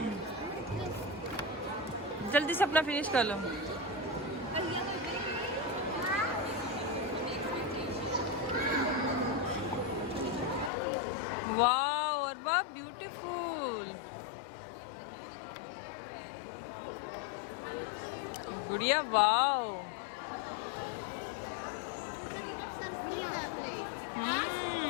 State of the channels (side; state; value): right; drops out; at 10.7 s